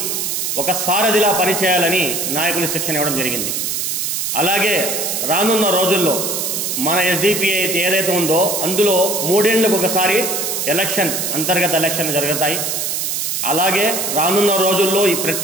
ఒక సారథిలా పనిచేయాలని నాయకులు శిక్షణ ఇవ్వడం జరిగింది. అలాగే రానున్న రోజుల్లో మన ఎస్డిపిఐ అయితే ఏదైతే ఉందో అందులో 3 ఏళ్లకు ఒకసారి అంతర్గత ఎలక్షన్ జరుగుతాయి. అలాగే రానున్న రోజుల్లో ఈ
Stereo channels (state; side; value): noise; right; hiss, 1 dB below the sound